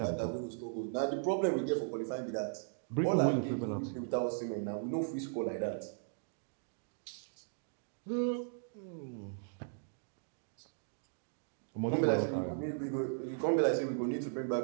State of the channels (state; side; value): silent; left; digital silence